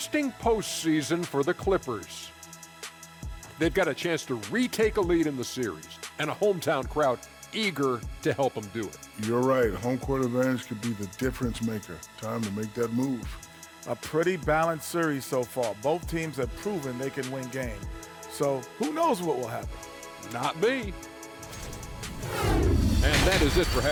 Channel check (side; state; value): both; identical; correlation 1.00